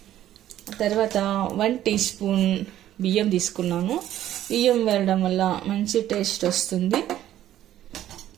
తర్వాత 1 టీ స్పూన్ బియ్యం తీసుకున్నాను. బియ్యం వేయడం వల్ల మంచి టేస్ట్ వస్తుంది.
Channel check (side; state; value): left; quieter; 12.5 dB